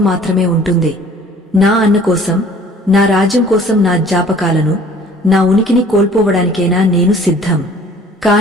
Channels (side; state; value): both; normal; correlation 0.52